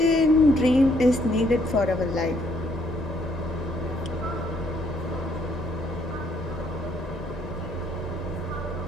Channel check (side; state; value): both; normal; correlation 0.68